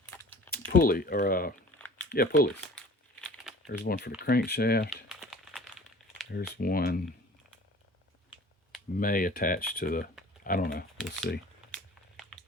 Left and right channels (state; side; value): normal; both; correlation 0.46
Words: pulley, or pulleys. There's one for the crankshaft. There's one may attach to the, I don't know, we'll see.